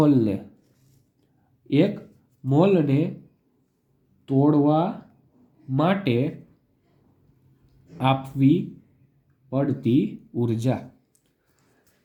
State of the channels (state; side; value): identical; both; correlation 1.00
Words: મોલને તોડવા માટે આપવી પડતી ઉર્જા.